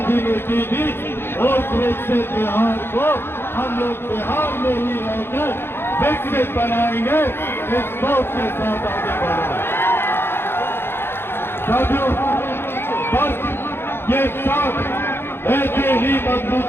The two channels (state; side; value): late; right; 0.11 ms